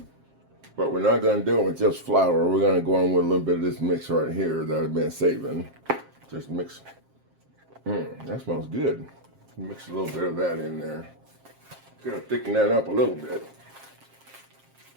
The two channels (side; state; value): left; late; 7.5 ms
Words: But we're not gonna do it with just flour. We're gonna go on with a little bit of this mix right here that I've been saving. Just mix. That smells good. Mix a little bit of that in there. Gonna thicken that up a little bit.